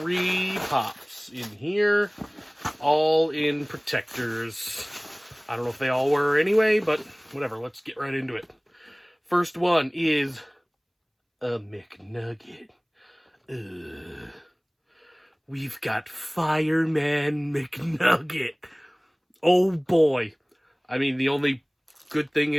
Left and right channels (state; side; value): identical; both; correlation 1.00